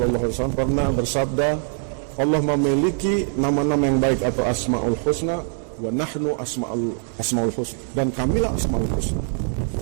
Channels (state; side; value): silent; left; 55 dB below the other